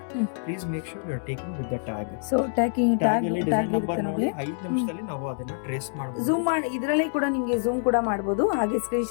please make sure you are taking with the tag. So tag tag ಅಲ್ಲಿ ಡಿಸೈನ್ ನಂಬರ್ ಇರುತ್ತೆ ನೋಡಿ ನೋಡಿ. 5 ನಿಮಿಷದಲ್ಲಿ ನಾವು ಅದನ್ನ ಟ್ರೇಸ್ ಮಾಡಬಹುದು. ಝೂಮ್ ಮಾಡಿ ಇದರಲ್ಲಿ ಕೂಡ ನಿಮ್ಗೆ ಝೂಮ್ ಕೂಡ ಮಾಡಬಹುದು, ಹಾಗೆ ಸ್ಕ್ರೀನ್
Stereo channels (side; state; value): right; silent; digital silence